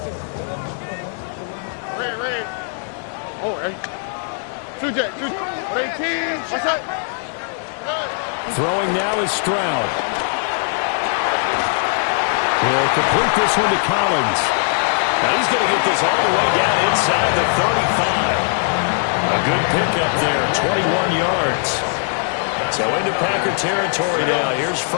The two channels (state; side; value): silent; right; 66 dB below the other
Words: Oh, hey. 2J. 18. What's up? Throwing now is Stroud. He'll complete this one to Collins. Now he's going to get this all the way down inside the 35. A good pickup there, 21 yards. So into Packer territory now. Here's